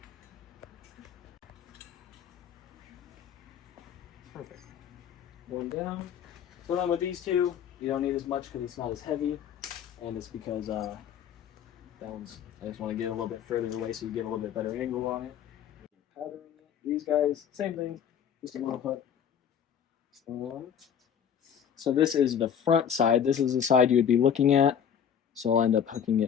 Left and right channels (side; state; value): right; quieter; 8.3 dB